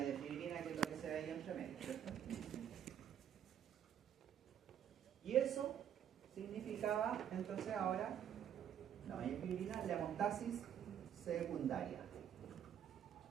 de fibrina, que es lo que se ve ahí entre medio, ¿cierto? Y eso significaba, entonces ahora, la malla de fibrina, la hemostasis secundaria.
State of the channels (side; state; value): left; quieter; 9.5 dB